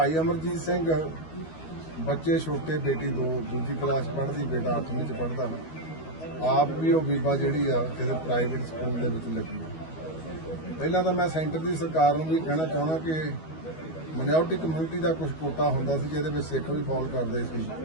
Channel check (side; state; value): right; late; 12 ms